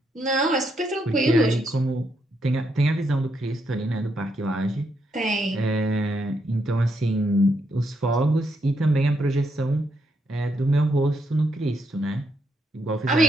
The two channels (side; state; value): both; normal; correlation 0.78